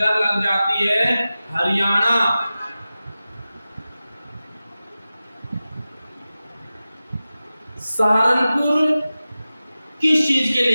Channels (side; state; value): both; inverted; correlation -0.95